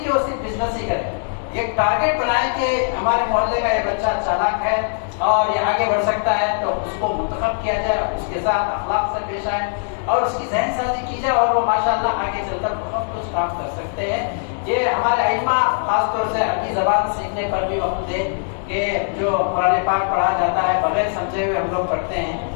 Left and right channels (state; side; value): silent; right; digital silence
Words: کہ وہ صرف بزنس ہی کرے۔ ایک ٹارگیٹ بنائیں کہ ہمارے محلے کا یہ بچہ چالاک ہے اور یہ آگے بڑھ سکتا ہے، تو اس کو منتخب کیا جائے، اس کے ساتھ اخلاق سے پیش آئے اور اس کی ذہن سازی کی جائے، اور وہ ماشاءاللہ آگے چل کر بہت کچھ کام کر سکتے ہیں۔ یہ ہمارے ائمہ خاص طور سے عربی زبان سیکھنے پر بھی وقت دے کہ جو قرآن پاک پڑھا جاتا ہے بغیر سمجھے ہوئے ہم لوگ پڑھتے ہیں،